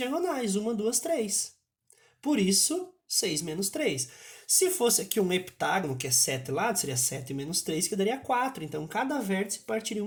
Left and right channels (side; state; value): both; identical; correlation 1.00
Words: 1, 2, 3. Por isso, 6 menos 3. Se fosse aqui um heptágono, que é 7 lados, seria 7 menos 3, que daria 4. Então, cada vértice partiria